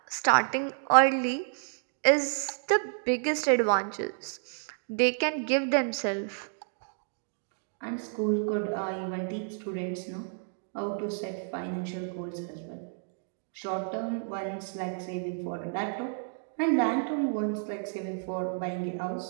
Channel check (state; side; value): silent; left; 57 dB below the other